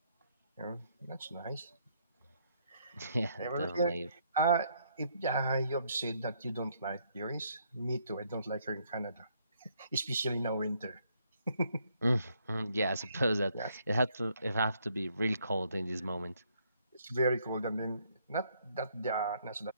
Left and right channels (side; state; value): both; inverted; correlation -0.70